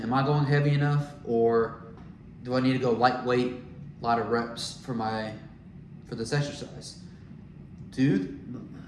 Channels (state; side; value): identical; both; correlation 1.00